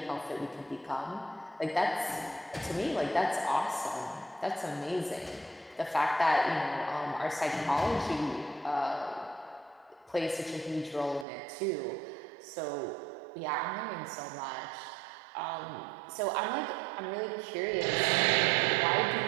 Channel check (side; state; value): left; drops out; at 11.2 s